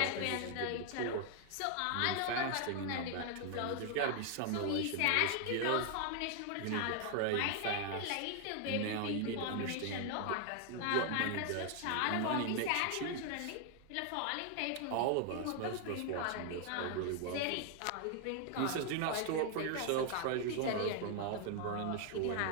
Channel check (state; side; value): different; both; correlation 0.00